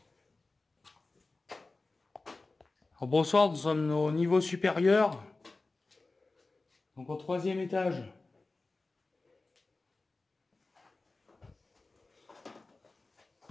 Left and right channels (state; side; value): quieter; right; 3.4 dB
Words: Alors, bonsoir, nous sommes au niveau supérieur. Donc au 3e étage.